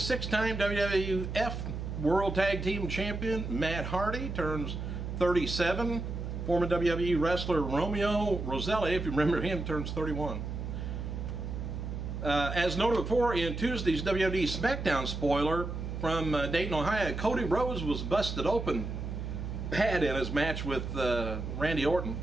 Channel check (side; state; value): right; noise; hum, 5 dB below the sound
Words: WWF World Tag Team Champion Matt Hardy, turns 37. Former WWE wrestler Romeo Roselli, if you remember him, turns 31. As noted before, in Tuesday's WWE SmackDown spoiler from Dayton, Ohio, Cody Rhoades was busted open bad in his match with Randy Orton.